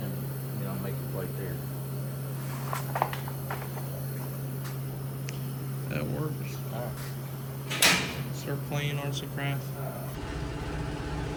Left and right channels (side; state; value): both; identical; correlation 1.00